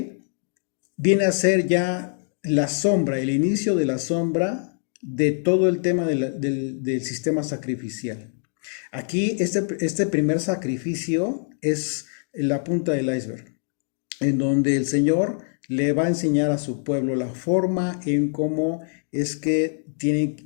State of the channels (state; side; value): silent; right; digital silence